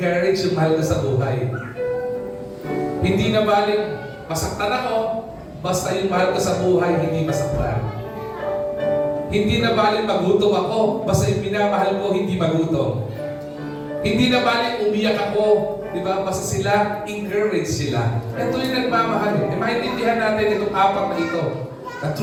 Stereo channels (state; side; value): identical; both; correlation 1.00